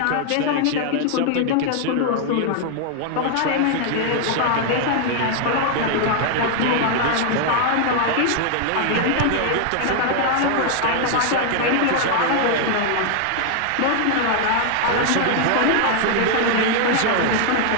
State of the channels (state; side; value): different; both; correlation 0.00